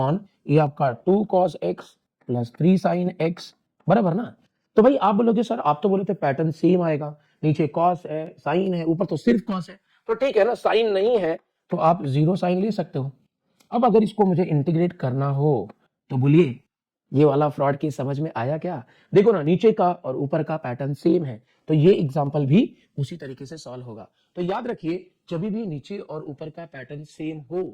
ये आपका 2 cos x plus 3 sine x, बराबर ना। तो भाई आप बोलोगे सर आप तो बोले थे पैटर्न सेम आएगा, नीचे कॉस है, साइन है, ऊपर तो सिर्फ कॉस है। तो ठीक है ना, साइन नहीं है तो आप 0 साइन ले सकते हो। अब अगर इसको मुझे इंटीग्रेट करना हो तो बोलिए ये वाला फ्रॉड की समझ में आया क्या। देखो ना नीचे का और ऊपर का पैटर्न सेम है, तो ये एग्जांपल भी उसी तरीके से सॉल्व होगा। तो याद रखिए जब भी नीचे और ऊपर का पैटर्न सेम हो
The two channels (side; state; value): both; identical; correlation 1.00